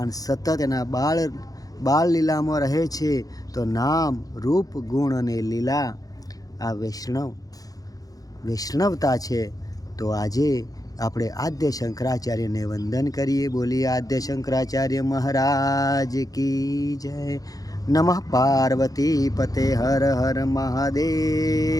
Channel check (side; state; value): right; late; 0.18 ms